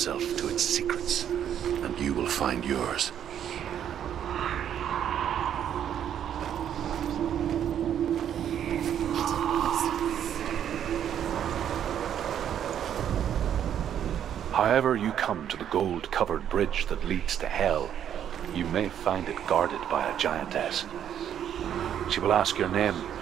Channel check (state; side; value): quieter; left; 9.6 dB